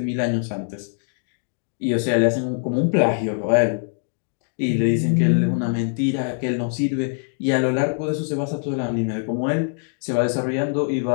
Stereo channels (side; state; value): right; silent; digital silence